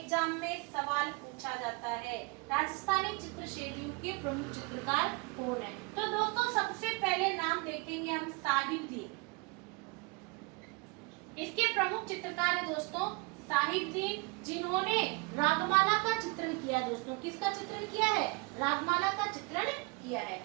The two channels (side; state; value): left; quieter; 29.3 dB